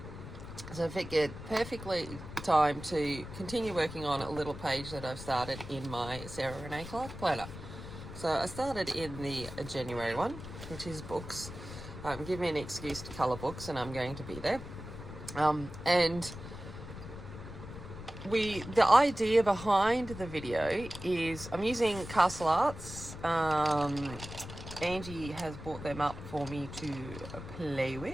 So I figured perfectly time to continue working on a little page that I've started in my Sara Renee Clark planner. So I started in the January one, which is books. Give me an excuse to colour books and I'm going to be there. And the idea behind the video is I'm using Castle Arts. Angie has brought them up for me to play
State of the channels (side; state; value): left; noise; rumble, 11 dB below the sound